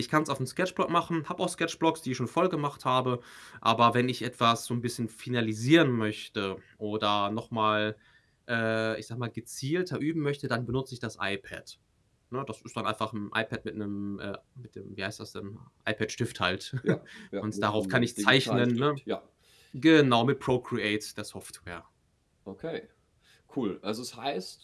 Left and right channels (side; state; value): both; identical; correlation 1.00